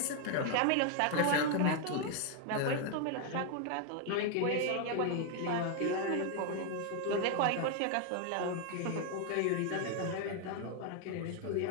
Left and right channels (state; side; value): different; both; correlation 0.00